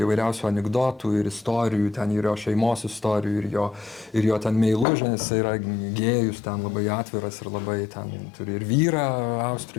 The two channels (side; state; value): right; drops out; at 4.9 s